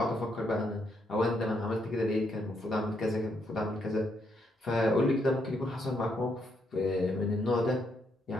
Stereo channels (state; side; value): normal; both; correlation 0.76